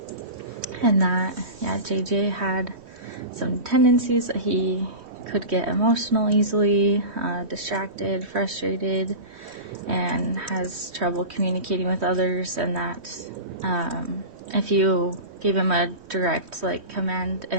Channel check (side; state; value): left; late; 3.1 ms